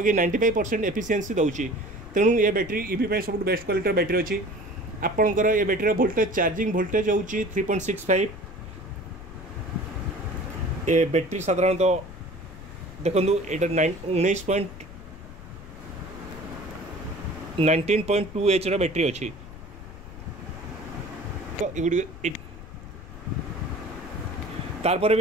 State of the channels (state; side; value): noise; left; rumble, 15 dB below the sound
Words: 95% एफिशिएंसी दूसरी। तेणु ये बैटेरी ईवी सब बेस्ट क्वालिटी बैटेरी अच्छी। आपंकर ये बैटेरी वोल्टेज चार्जिंग वोल्टेज हूँ 3.65। ये बैटेरी साधारणतः देखो ये 19.2 H बैटेरी अच्छी। तो तारपर